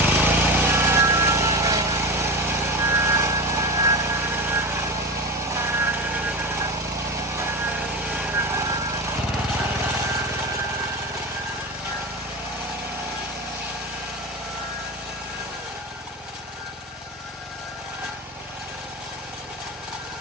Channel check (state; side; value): normal; both; correlation 0.25